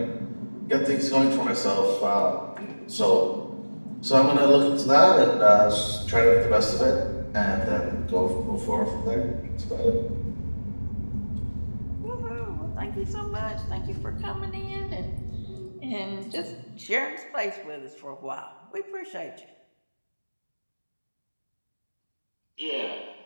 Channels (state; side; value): inverted; both; correlation -1.00